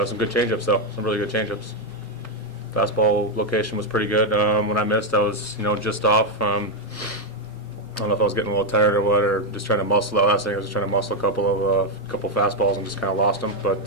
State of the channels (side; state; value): both; normal; correlation 0.04